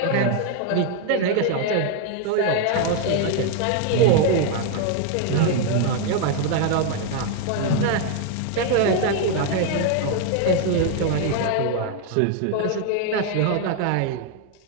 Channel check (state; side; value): different; both; correlation 0.00